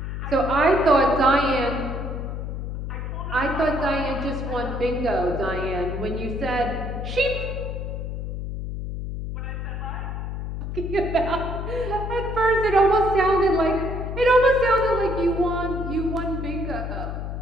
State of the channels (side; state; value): left; noise; hum, 5 dB below the sound